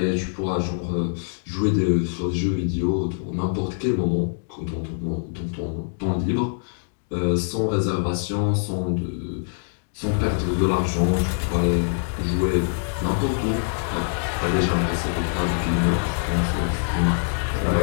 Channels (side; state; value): right; silent; digital silence